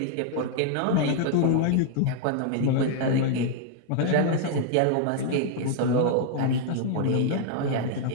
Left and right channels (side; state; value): both; different; correlation 0.00